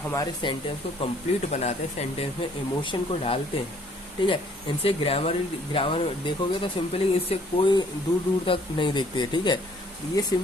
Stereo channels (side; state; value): both; normal; correlation 0.61